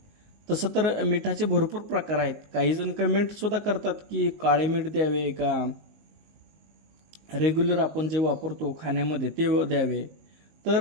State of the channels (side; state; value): left; late; 19 ms